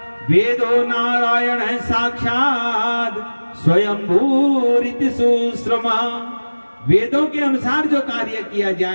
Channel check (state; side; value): inverted; both; correlation -1.00